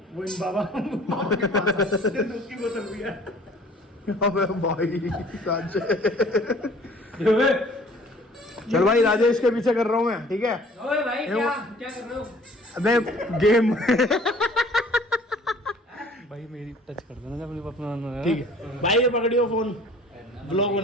वो इन बाबा के पास उसकी बोतल भी है। अबे भाई चल भाई, राजेश के पीछे कर रहा हूँ मैं। ठीक है ओए भाई क्या कर रहे हो? अबे गेम भाई मेरी टच कर देना जब अपना। ठीक है भाई, ये पकड़ियो फोन, ब्लॉग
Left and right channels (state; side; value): normal; both; correlation 0.52